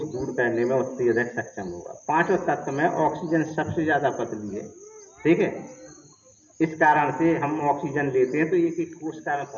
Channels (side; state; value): both; identical; correlation 1.00